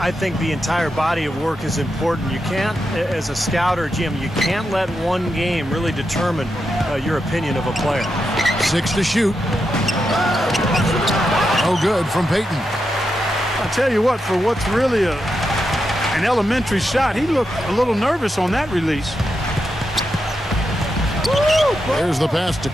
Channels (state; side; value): normal; both; correlation 0.86